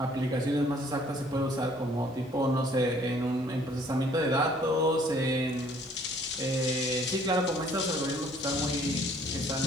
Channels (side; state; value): both; normal; correlation 0.59